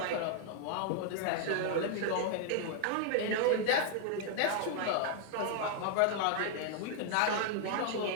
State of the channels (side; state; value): both; different; correlation 0.00